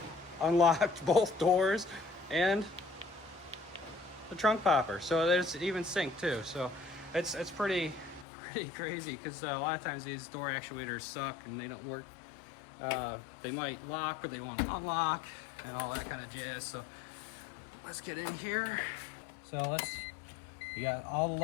unlocked both doors, and the trunk popper. So there's even sync too. So it's pretty crazy, because a lot of times these door actuators suck and they don't work. They might lock, but they won't unlock, and all that kind of jazz. So let's get in here. So you got all the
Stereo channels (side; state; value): right; drops out; at 8.2 s